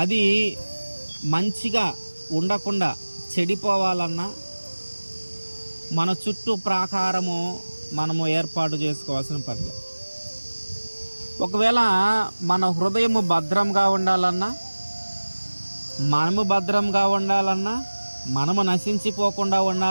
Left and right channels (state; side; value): inverted; both; correlation -1.00